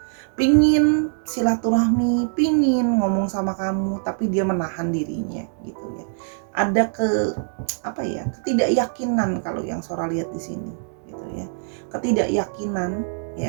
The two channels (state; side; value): silent; left; digital silence